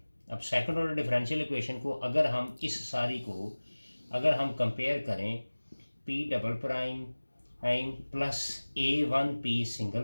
अब सेकंड ऑर्डर डिफरेंशियल इक्वेशन को अगर हम इस सारी को अगर हम कंपेयर करें, p double prime plus a1p single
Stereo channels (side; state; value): both; inverted; correlation -1.00